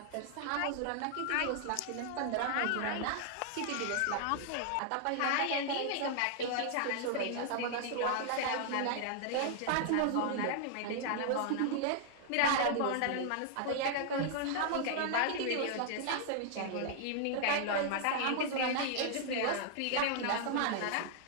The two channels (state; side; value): different; both; correlation 0.00